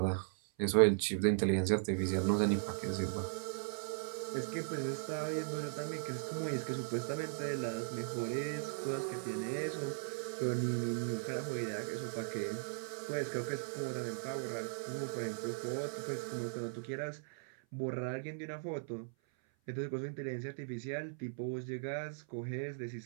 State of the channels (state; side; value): silent; left; 52 dB below the other